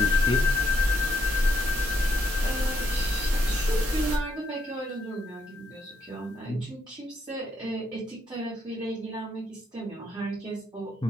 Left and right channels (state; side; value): normal; both; correlation 0.73